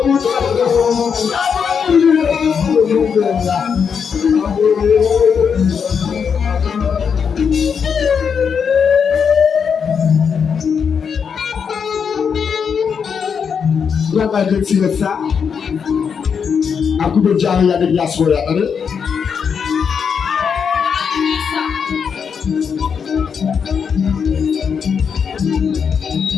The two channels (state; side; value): quieter; right; 6.6 dB